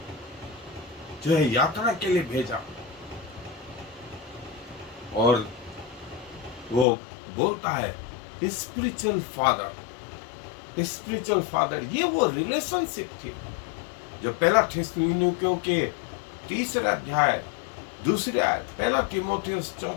जो है यात्रा के लिए भेजा। और वो बोलता है स्पिरिचुअल फादर, स्पिरिचुअल फादर, ये वो रिलेशनशिप थी जो पहला थिस्सलुनीकियों के 3 अध्याय 2 आयत, पहला तीमुथियुस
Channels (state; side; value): drops out; right; at 6.9 s